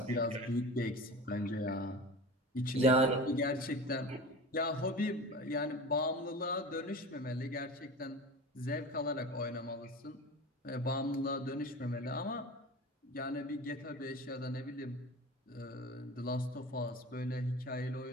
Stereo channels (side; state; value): both; normal; correlation 0.34